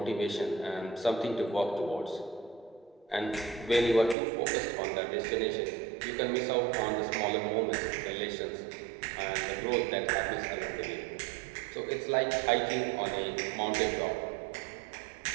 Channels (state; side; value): drops out; left; at 4.2 s